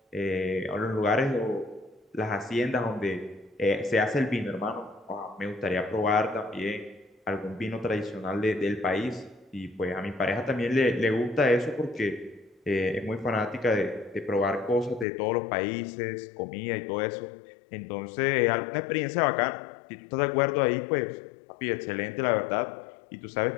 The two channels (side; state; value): right; drops out; at 15.1 s